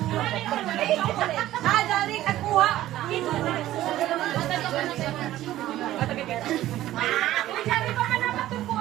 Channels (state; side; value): quieter; left; 14.4 dB